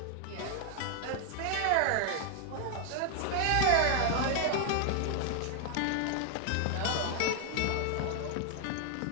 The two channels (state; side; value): different; both; correlation 0.00